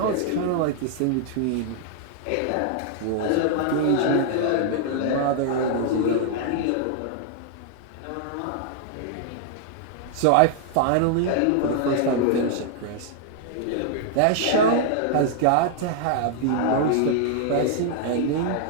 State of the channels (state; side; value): different; both; correlation -0.01